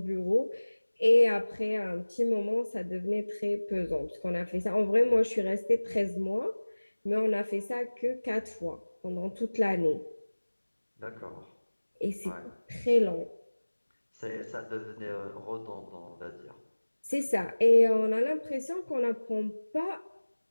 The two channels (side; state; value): both; inverted; correlation -1.00